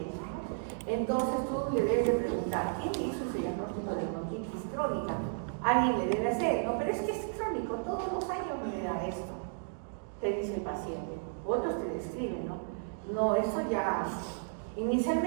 eso. Entonces tú le debes de preguntar, ¿quién hizo ese diagnóstico de bronquitis crónica? Alguien le debe hacer, no, pero es que es crónico, todos los años me da esto, te dice el paciente. Otros te describen, ¿no? No, eso ya...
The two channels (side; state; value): left; silent; digital silence